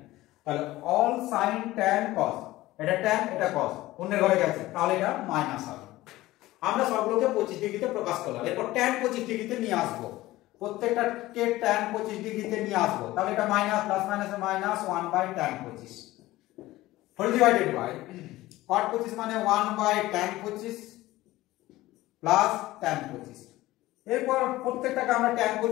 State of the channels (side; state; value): right; quieter; 17.3 dB